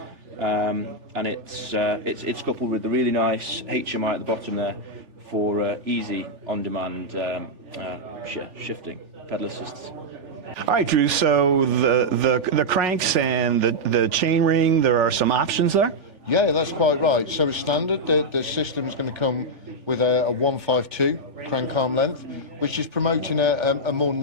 And it's coupled with the really nice HMI at the bottom there for easy on-demand shifting, pedal assists. All right, Drew. So the cranks and the chain ring, there are some options there. Yeah, that's quite right. So as standard, the system is going to come with a 152 crank arm length, which is promoting a more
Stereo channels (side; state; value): left; late; 3.4 ms